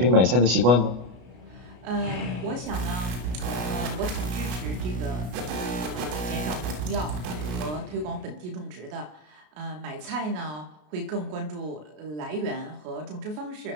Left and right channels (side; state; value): left; late; 33 ms